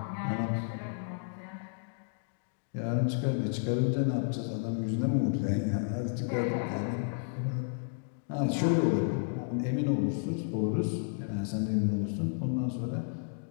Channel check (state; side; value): silent; right; digital silence